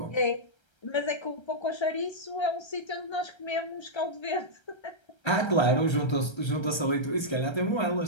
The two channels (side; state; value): right; late; 1.3 ms